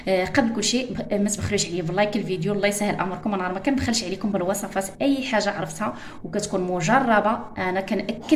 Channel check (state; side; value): identical; both; correlation 1.00